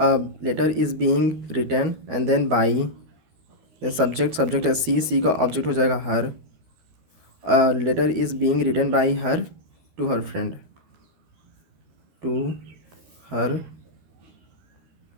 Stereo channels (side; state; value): left; late; 12 ms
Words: letter is being written and then by, subject, subject है she, she का object हो जाएगा her. A letter is being written by her to her friend, to her